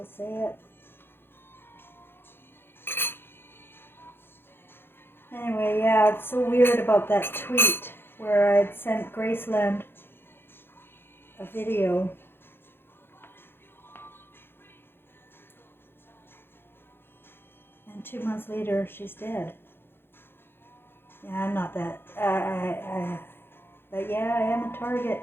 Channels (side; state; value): right; late; 0.11 ms